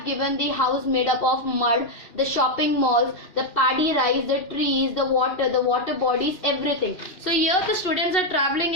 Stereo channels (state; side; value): late; right; 2.7 ms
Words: given the house made up of mud, the shopping malls, the paddy rice, the trees, the water bodies, everything. So here the students are traveling